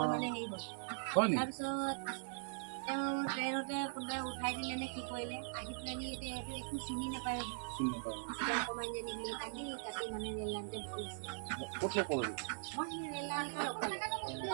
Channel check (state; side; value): silent; left; digital silence